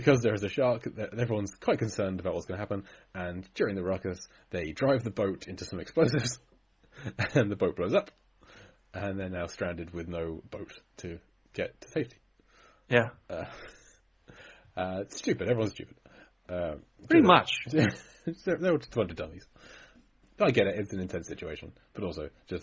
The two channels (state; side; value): identical; both; correlation 1.00